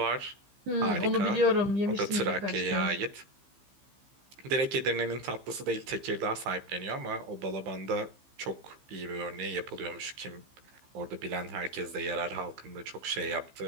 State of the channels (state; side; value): late; left; 15 ms